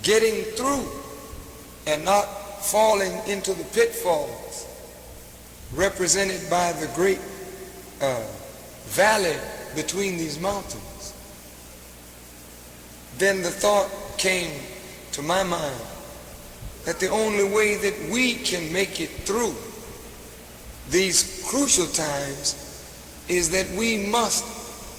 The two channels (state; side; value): identical; both; correlation 1.00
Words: getting through and not falling into the pitfalls represented by the great valley between these mountains, then the thought came to my mind that the only way that we can make it through these crucial times is that we must